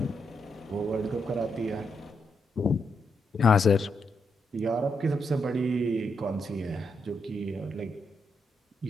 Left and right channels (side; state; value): both; normal; correlation 0.81